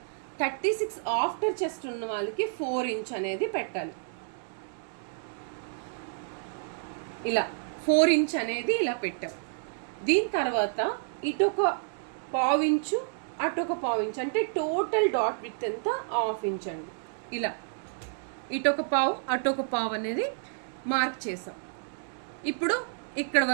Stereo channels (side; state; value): left; silent; digital silence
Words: 36 ఆఫ్టర్ చెస్ట్ ఉన్న వాళ్ళకి 4 ఇంచ్ అనేది పెట్టాలి. ఇలా 4 ఇంచ్ అనేది ఇలా పెట్టాం. దీని తర్వాత ఇటొక 1/4 ఇంచు అటొక 1/4 ఇంచ్ అంటే టోటల్ డాట్ విడ్త్ ఎంత 1/2 ఇంచ్ అండి. ఇలా ఇటొక 1/4 అటొక 1/4 అనేది మార్క్ చేసాం. ఇప్పుడు ఇక్కడ